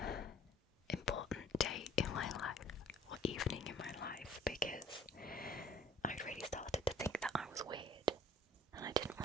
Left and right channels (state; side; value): normal; both; correlation 0.54